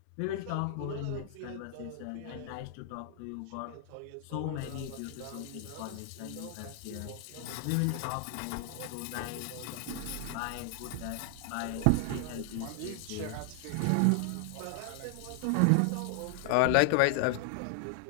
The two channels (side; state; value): both; different; correlation 0.00